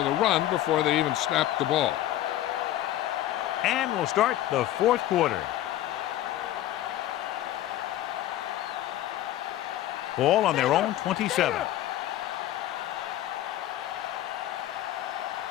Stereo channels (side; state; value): right; quieter; 13.4 dB